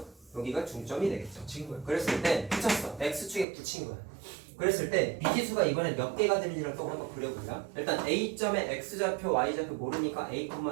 여기가 중점이 되겠죠. 친구야. 그랬을 때 붙였어. X축에 붙인 거야. 그랬을 때 미지수가 이번에 몇 개가 되는지를 또 한번 그려보자. 일단 A점의 X좌표, Y좌표 모르니까 A,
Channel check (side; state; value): left; drops out; at 3.5 s